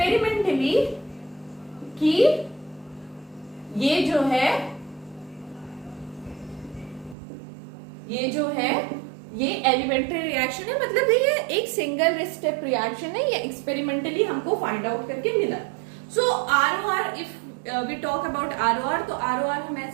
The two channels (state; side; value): drops out; left; at 7.2 s